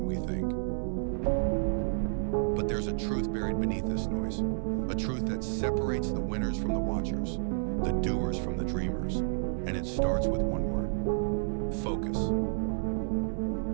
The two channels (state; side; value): silent; left; 57 dB below the other